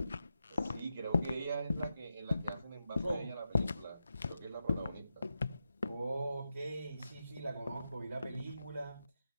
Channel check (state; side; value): inverted; both; correlation -0.88